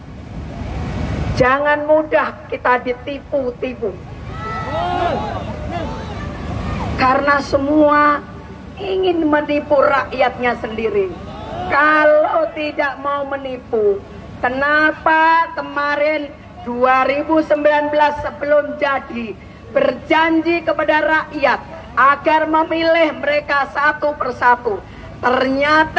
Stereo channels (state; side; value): identical; both; correlation 1.00